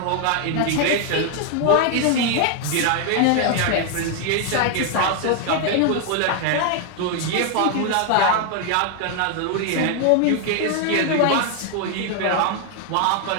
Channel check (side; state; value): both; different; correlation 0.00